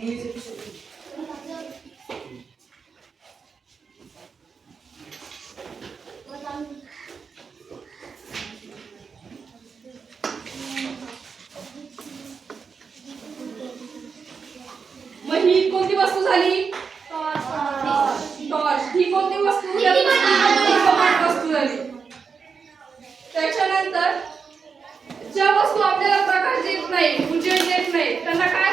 मग ही कोणती वस्तू झाली? टॉर्च. ही कोणती वस्तू? दीपमान वस्तू झाली. त्याच्यानंतर ज्या वस्तू आपल्याला प्रकाश देत नाही, उजेड देत नाही, त्यांना काय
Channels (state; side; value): quieter; left; 5.6 dB